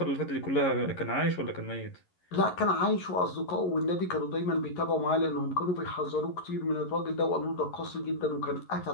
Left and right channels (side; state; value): right; late; 11 ms